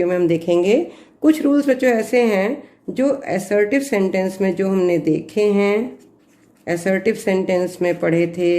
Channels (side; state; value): both; identical; correlation 1.00